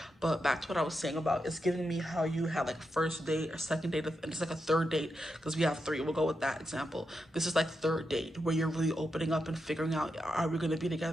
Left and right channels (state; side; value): normal; both; correlation 0.86